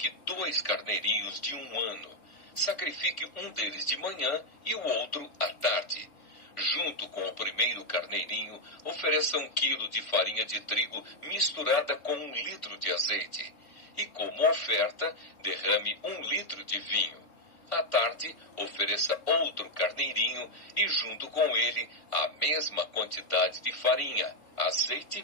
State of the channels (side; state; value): right; late; 3.4 ms